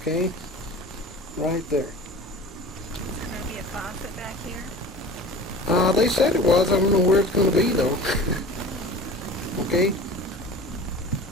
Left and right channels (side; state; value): both; normal; correlation 0.39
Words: Right there. Is there going to be a faucet back here? They said it was. I don't know where it's going to be though. Okay?